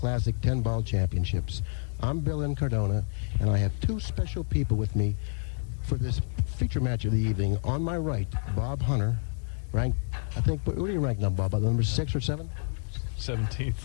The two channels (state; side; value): silent; right; 59 dB below the other